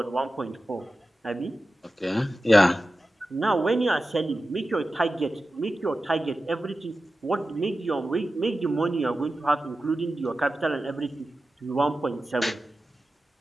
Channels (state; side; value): normal; both; correlation 0.93